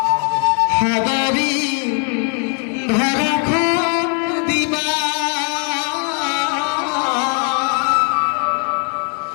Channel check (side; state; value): right; quieter; 39.2 dB